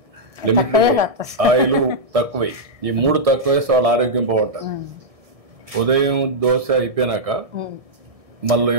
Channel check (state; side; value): late; left; 1.6 ms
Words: లిమిట్, ఆయిల్ తక్కువై. ఈ 3 తక్కువ వేస్తే వాళ్ళ ఆరోగ్యం బాగుంటుంది. ఉదయం దోశ అయిపోయినాక మళ్ళీ